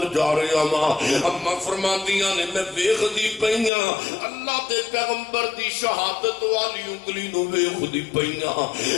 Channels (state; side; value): drops out; right; at 3.7 s